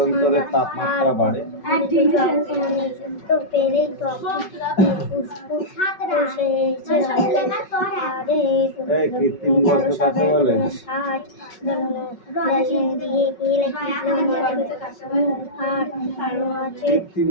তাপমাত্রা বাড়ে? তো পেলেই তো এই কৃত্রিম গর্ত কাকে বলে? কৃত্রিম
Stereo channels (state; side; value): late; right; 5.3 ms